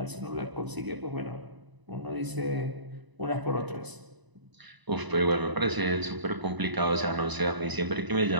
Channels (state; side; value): late; left; 1.0 ms